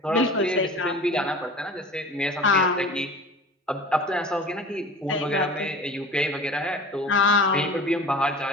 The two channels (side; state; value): both; normal; correlation 0.39